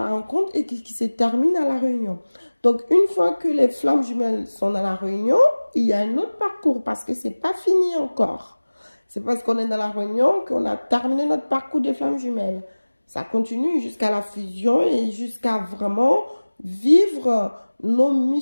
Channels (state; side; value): inverted; both; correlation -1.00